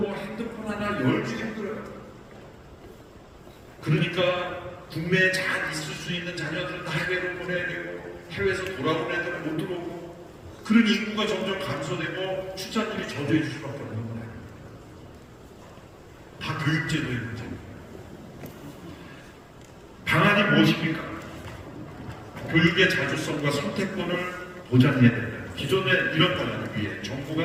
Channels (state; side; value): identical; both; correlation 1.00